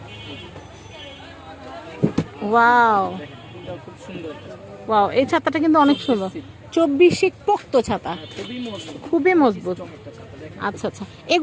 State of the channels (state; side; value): identical; both; correlation 1.00